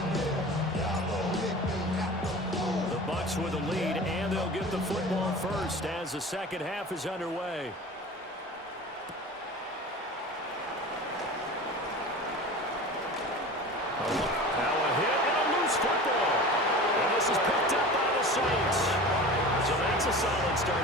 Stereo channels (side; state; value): both; normal; correlation 0.36